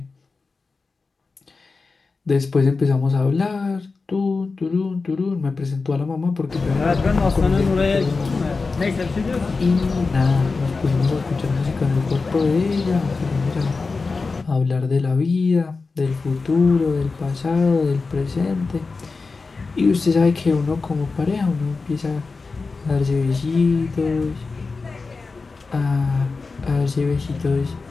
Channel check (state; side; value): quieter; right; 4.2 dB